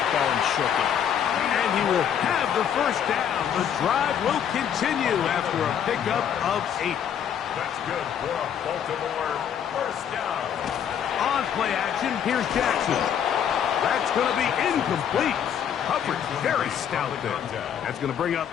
going, shook it. And he will have the first down. The drive will continue after a pickup of 8. That's good for a Baltimore first down. On play action, here's Jackson. That's going to be incomplete. Coverage very stout there. That's going to bring up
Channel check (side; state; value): right; quieter; 8.8 dB